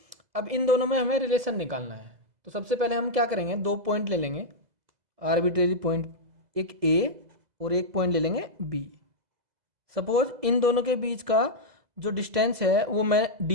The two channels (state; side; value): late; left; 2.0 ms